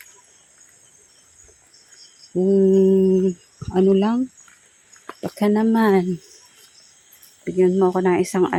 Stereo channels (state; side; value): identical; both; correlation 1.00